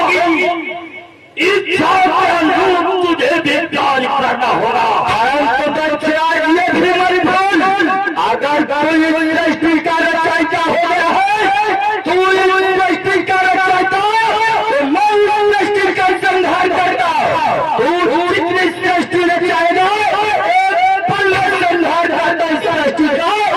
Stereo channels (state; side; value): identical; both; correlation 1.00